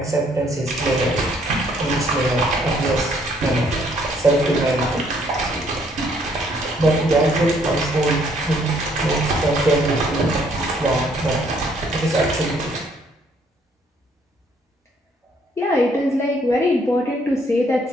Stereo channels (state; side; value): normal; both; correlation 0.66